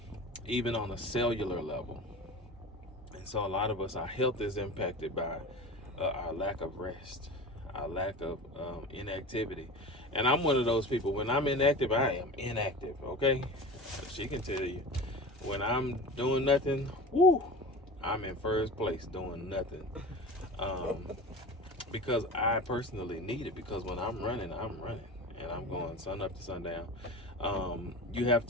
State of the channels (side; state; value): both; normal; correlation 0.33